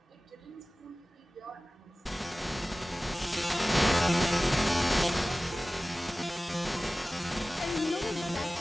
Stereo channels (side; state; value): both; normal; correlation 0.97